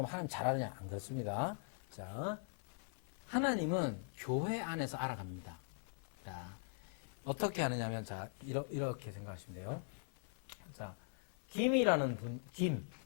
하나님 잘 아느냐? 안 그렇습니다. 자, 하나님은 교회 안에서 알아갑니다. 자, 어떻게 하느냐면, 자, 이렇게 생각하시면 돼요. 자, 김이라는 분,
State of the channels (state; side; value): silent; right; 50 dB below the other